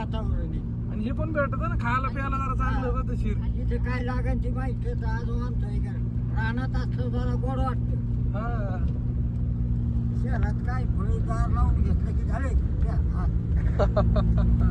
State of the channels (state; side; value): identical; both; correlation 1.00